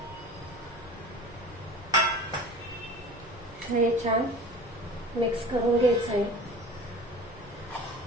हे छान मिक्स करून घ्यायचं आहे.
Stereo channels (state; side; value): noise; left; rumble, 20 dB below the sound